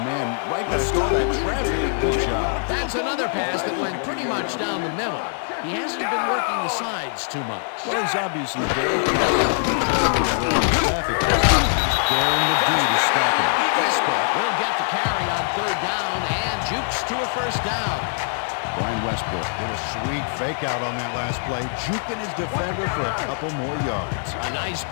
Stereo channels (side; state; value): right; silent; digital silence